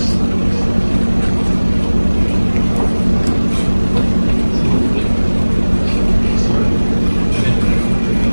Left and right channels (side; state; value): both; inverted; correlation -1.00